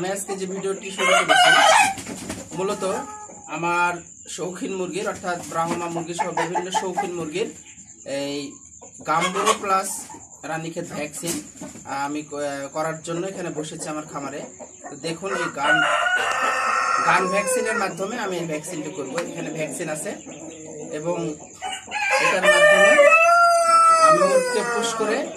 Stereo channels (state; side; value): identical; both; correlation 1.00